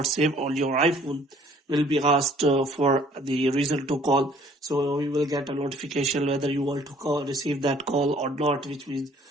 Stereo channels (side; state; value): both; normal; correlation 0.58